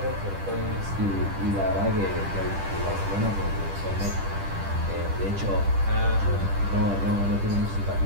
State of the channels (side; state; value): left; late; 10 ms